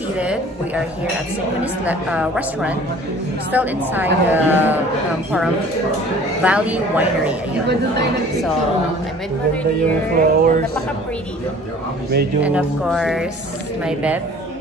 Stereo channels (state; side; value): normal; both; correlation 0.49